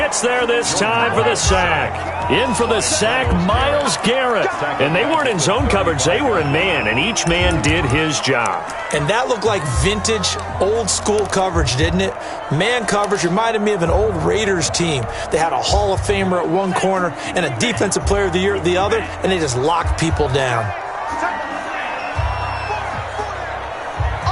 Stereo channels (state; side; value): identical; both; correlation 1.00